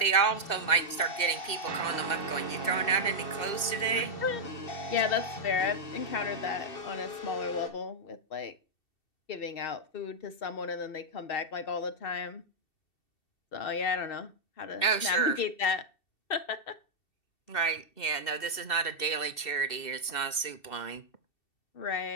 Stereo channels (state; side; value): late; right; 2.7 ms